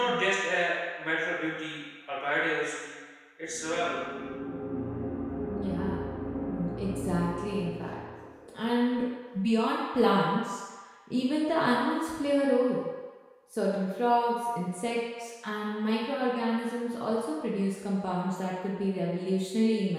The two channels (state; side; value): identical; both; correlation 1.00